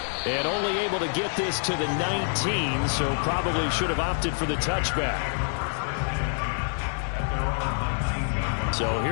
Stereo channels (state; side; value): silent; right; 60 dB below the other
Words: And only able to get this to the 19, so probably should have opted for the touchback. So